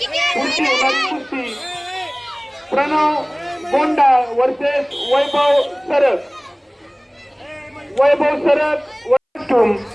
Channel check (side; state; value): both; identical; correlation 1.00